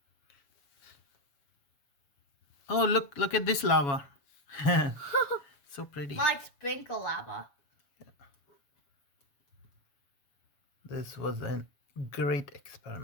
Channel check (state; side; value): late; right; 7.2 ms